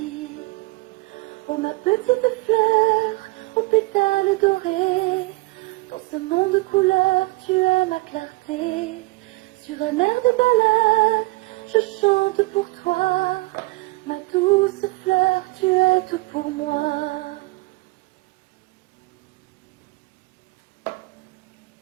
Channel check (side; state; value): left; quieter; 23.1 dB